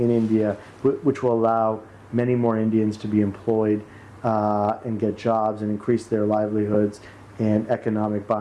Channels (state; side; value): identical; both; correlation 1.00